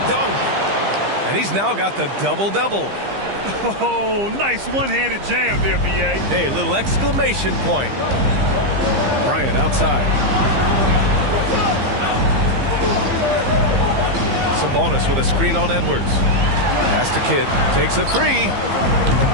dunk. And he's now got the double-double. Oh, nice one-handed jam there, B.A. Hey, little exclamation point. Bryant outside. Sabonis with a screen on Edwards. Pass to Kidd. Takes a 3.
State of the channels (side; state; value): left; late; 15 ms